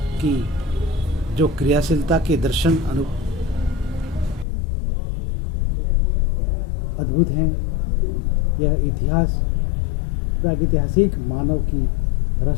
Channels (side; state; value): right; drops out; at 4.5 s